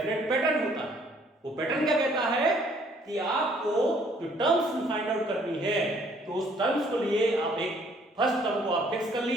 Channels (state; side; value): normal; both; correlation 0.62